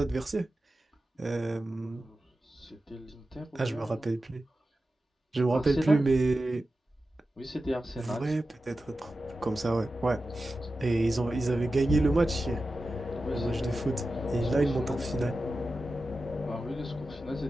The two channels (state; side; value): normal; both; correlation 0.93